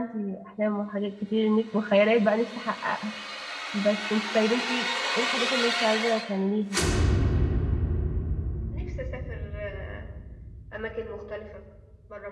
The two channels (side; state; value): both; identical; correlation 1.00